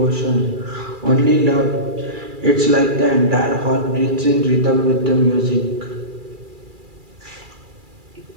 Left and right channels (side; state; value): left; late; 2.3 ms